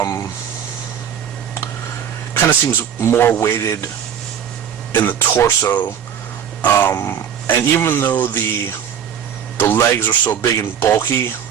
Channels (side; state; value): left; quieter; 8.7 dB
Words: Kind of seems more weighted in the torso, and even though the legs are so big and bulky,